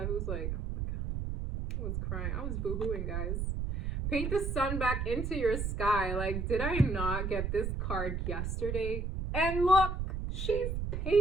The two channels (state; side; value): noise; right; rumble, 2 dB below the sound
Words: was like, oh my God, I was crying. I was boohooing, guys. Paint the sun back into your sky. Like, did I not get this card yesterday? And look, she's